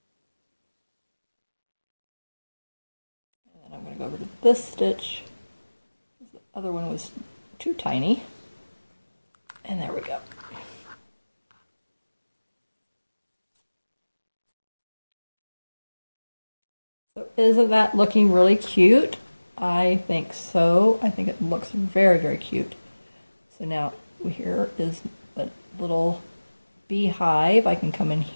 And then I'm going to go over to this stitch. The other one was too tiny. And there we go. So isn't that looking really cute? I think so. I think it looks very, very cute. So now here is a little beehive. I can come in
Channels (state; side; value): inverted; both; correlation -1.00